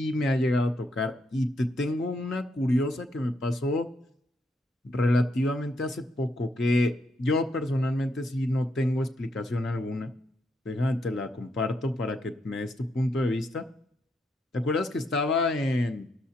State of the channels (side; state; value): both; normal; correlation 0.78